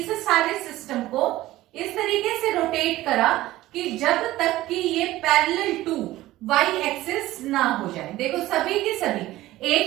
सारे सिस्टम को इस तरीके से रोटेट करा कि जब तक कि ये पैरेलल टू y एक्सिस ना हो जाए। देखो सभी की सभी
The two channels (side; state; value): left; quieter; 16.4 dB